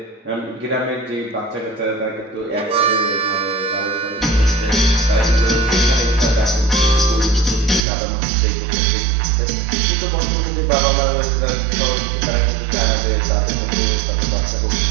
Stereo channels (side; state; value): left; drops out; at 7.8 s